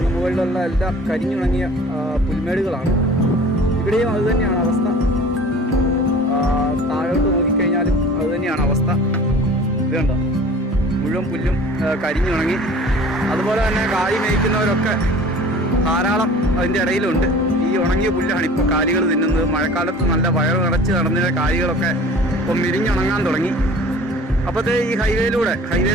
മുകളിലുള്ള എല്ലാം കരിഞ്ഞുണങ്ങിയ പുൽമേടുകളാണ്. ഇവിടെയും അതുതന്നെയാണ് അവസ്ഥ. താഴോട്ട് നോക്കിക്കഴിഞ്ഞാലും അതുതന്നെയാണ് അവസ്ഥ. ഇത് കണ്ടോ, മുഴുവൻ പുല്ലും കരിഞ്ഞുണങ്ങി. അതുപോലെ തന്നെ കാലി മേയ്ക്കുന്നവരൊക്കെ ധാരാളം അതിൻ്റെ ഇടയിലുണ്ട്. ഈ ഉണങ്ങിയ പുല്ലാണ് ഇപ്പോൾ കാലികൾ തിന്നുന്നത്. മഴക്കാലത്ത് നല്ല വയറ് നിറച്ച് നടന്നിരുന്ന കാലികളൊക്കെ ഇപ്പം മിരിഞ്ഞുണങ്ങാൻ തുടങ്ങി. അപ്പോഴത്തെ ഈ ഹൈവേ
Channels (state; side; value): normal; both; correlation 0.45